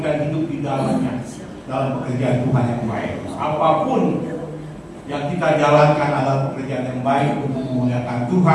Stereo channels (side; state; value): both; identical; correlation 1.00